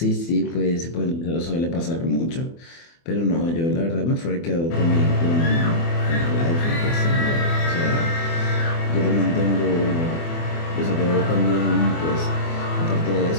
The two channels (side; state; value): right; late; 24 ms